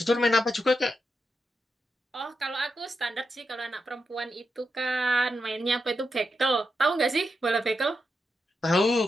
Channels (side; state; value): both; normal; correlation 0.86